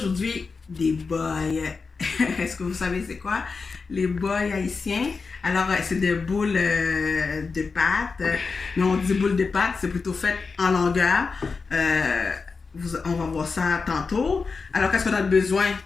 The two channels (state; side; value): quieter; right; 4.7 dB